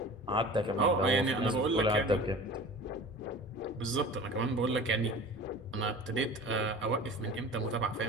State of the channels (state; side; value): normal; both; correlation 0.39